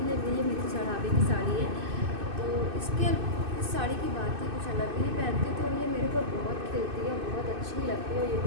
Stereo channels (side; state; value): left; late; 2.6 ms